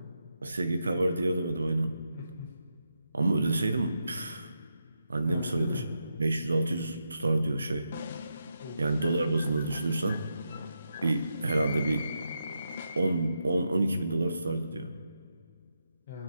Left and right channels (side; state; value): both; inverted; correlation -0.85